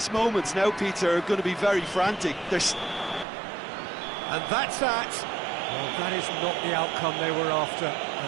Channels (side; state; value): left; drops out; at 3.2 s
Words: moments now, Peter, are going to be very frantic. And that's that. Well, that is not the outcome they were after.